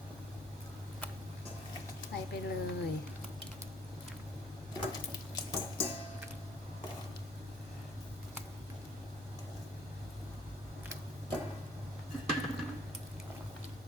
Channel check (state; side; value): normal; both; correlation 0.61